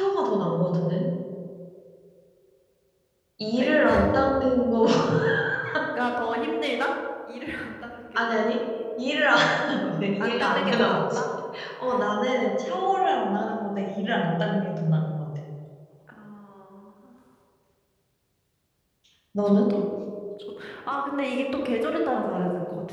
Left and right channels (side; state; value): both; identical; correlation 1.00